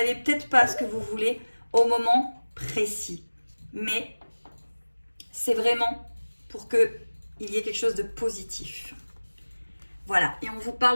peut-être pas ce que vous voulez au moment précis. Mais c'est vraiment pour qu'il y ait quelque chose de positif. Voilà, et on vous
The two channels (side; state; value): both; inverted; correlation -1.00